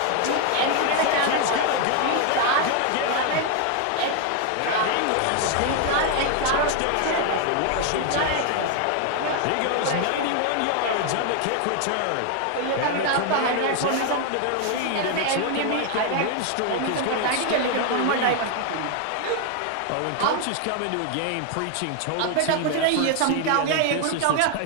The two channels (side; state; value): both; different; correlation 0.01